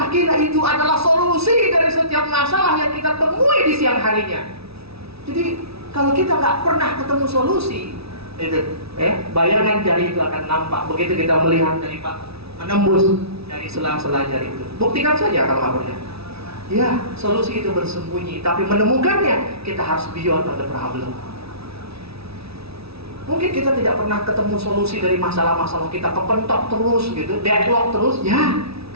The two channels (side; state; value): left; late; 0.77 ms